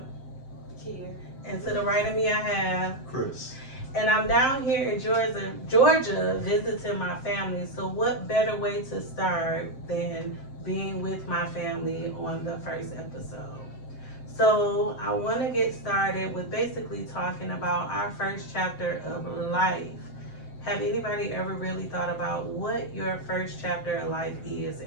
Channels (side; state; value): right; late; 7.6 ms